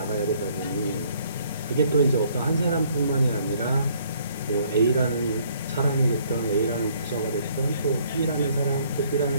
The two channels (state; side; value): inverted; both; correlation -0.63